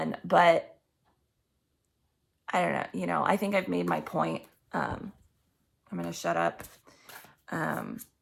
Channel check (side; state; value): both; identical; correlation 1.00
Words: But I don't know, I think I've made my point. I'm going to shut up.